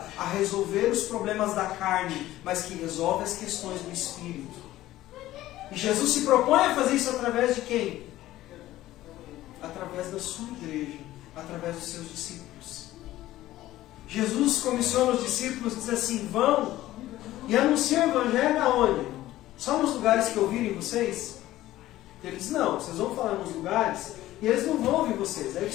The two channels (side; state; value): right; quieter; 15.2 dB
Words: a resolver os problemas da carne, mas que resolve as questões do Espírito. E Jesus se propõe a fazer isso através de quem? Através da sua igreja, através dos seus discípulos. Jesus comissiona os discípulos e diz assim, vão e anunciam o Evangelho aonde? Só nos lugares que ouvirem vocês? Ele diz, não, vocês vão falar nos lugares e eles não vão ouvir vocês. Aí